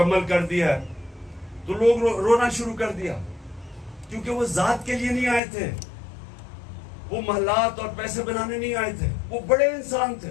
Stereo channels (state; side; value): drops out; right; at 5.4 s